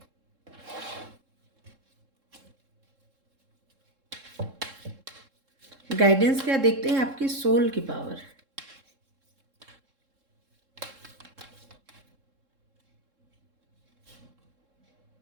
गाइडेंस क्या देखते हैं, आपकी सोल की पावर।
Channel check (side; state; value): left; late; 3.7 ms